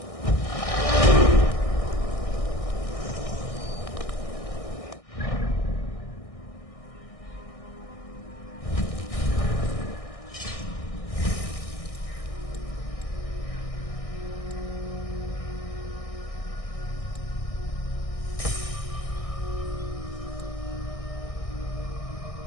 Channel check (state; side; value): late; right; 1.6 ms